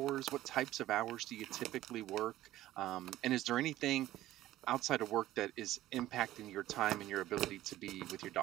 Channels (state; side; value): quieter; left; 14.7 dB